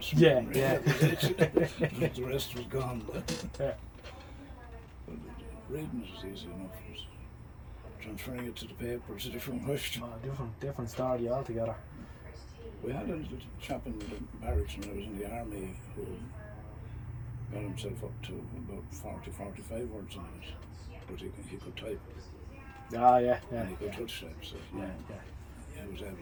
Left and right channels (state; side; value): identical; both; correlation 1.00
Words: from Yeah, memory. yeah. That was it. The rest was gone. Yeah. But reading it is easy enough. But transferring it to the paper is a different question. Different story altogether. We had a little chap in the barracks when I was in the army who got himself up to about 40-45 words a minute, but he could type Ah, yeah. Yeah. and he could touch type, so Yeah. he was